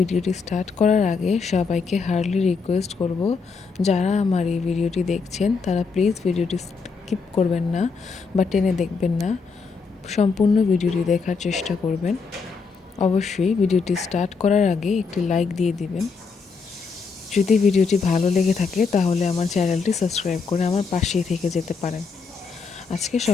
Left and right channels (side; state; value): right; quieter; 5.0 dB